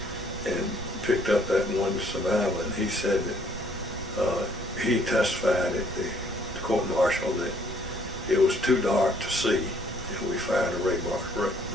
and picked up that one survivor, and he said that he testified at the court-martial that it was too dark to see, and we fired a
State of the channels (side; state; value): right; noise; rumble, 12 dB below the sound